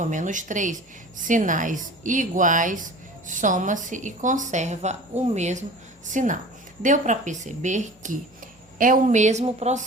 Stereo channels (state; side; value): normal; both; correlation 0.41